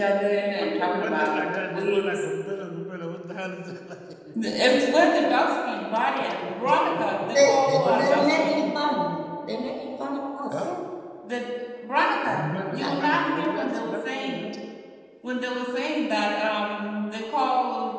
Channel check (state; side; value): identical; both; correlation 1.00